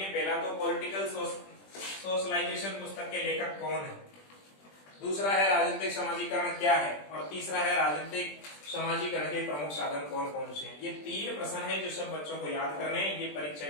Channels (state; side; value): late; right; 20 ms